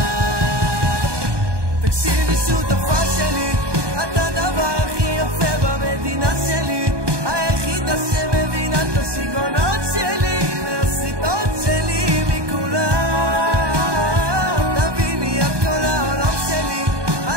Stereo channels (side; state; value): left; late; 1.2 ms